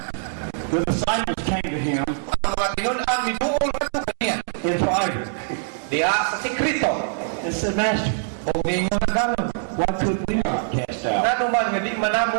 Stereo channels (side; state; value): left; silent; digital silence